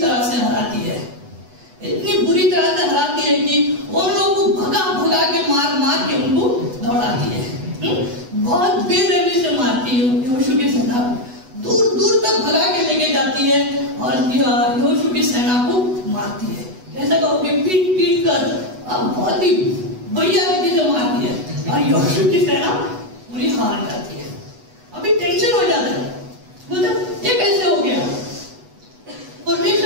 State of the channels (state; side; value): late; left; 8.1 ms